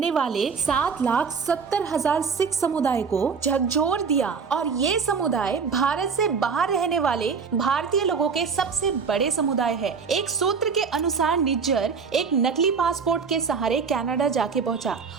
वाले 7,70,000 सिख समुदाय को झकझोर दिया और ये समुदाय भारत से बाहर रहने वाले भारतीय लोगों के सबसे बड़े समुदाय है। एक सूत्र के अनुसार निज्जर एक नकली पासपोर्ट के सहारे कनाडा जाके पहुंचा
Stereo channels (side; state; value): left; quieter; 5.6 dB